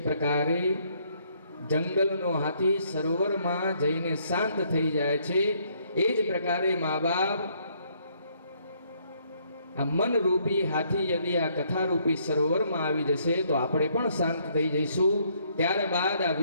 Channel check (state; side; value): inverted; both; correlation -0.68